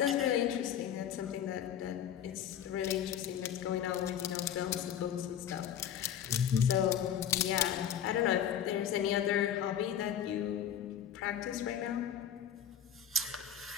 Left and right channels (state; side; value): quieter; right; 9.2 dB